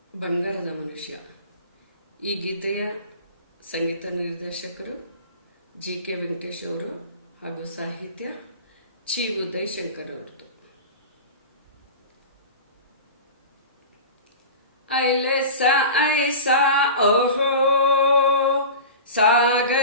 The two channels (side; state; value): both; inverted; correlation -0.33